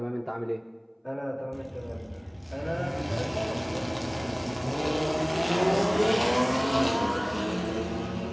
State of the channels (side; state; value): both; identical; correlation 1.00